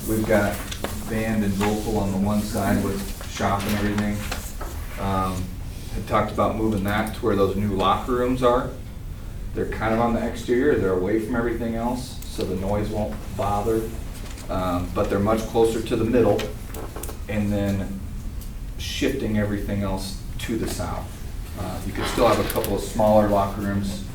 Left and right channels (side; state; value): both; identical; correlation 1.00